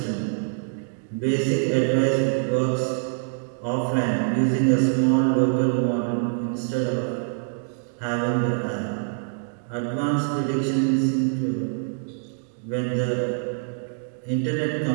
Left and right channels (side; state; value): left; silent; digital silence